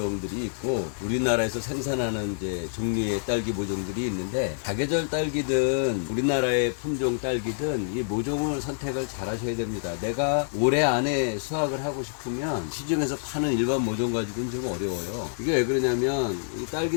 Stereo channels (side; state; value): right; silent; digital silence